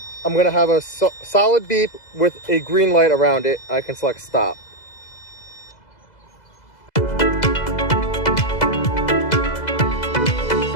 I'm going to have a solid beep with a green light around it. I can select stop.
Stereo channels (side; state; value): right; late; 2.0 ms